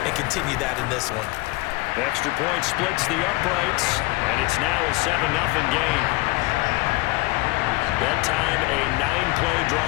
and continue that in this one. The extra point splits the uprights, and it's now a 7-0 game. That time, a 9-play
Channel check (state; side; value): quieter; right; 22.4 dB